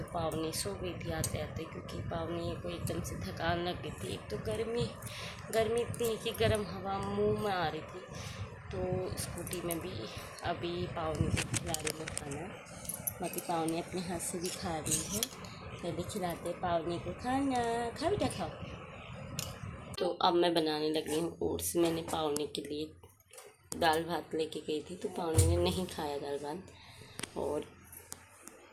पावनी सो गई थी आते आते, क्योंकि पावनी को एकदम से थकान लग गई थी। एक तो गर्मी इतनी कि गर्म हवा मुंह में आ रही थी। तो स्कूटी में भी अभी पावनी को खिला रही हूँ खाना। बाकी पावनी अपने हाथ से भी खा रही है। पहले खिलाते पावनी को खाना, खा बेटा खाओ। तो अब मैं बनाने लगी हूँ ओट्स। मैंने पावनी के लिए दाल भात लेके गई थी, तो पावनी ने नहीं खाया दाल भात और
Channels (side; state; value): both; identical; correlation 1.00